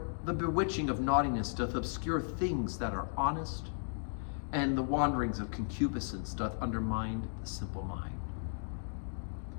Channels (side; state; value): right; silent; digital silence